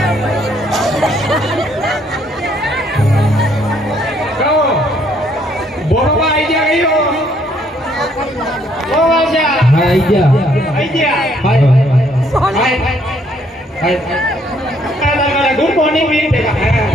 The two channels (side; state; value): both; normal; correlation 0.67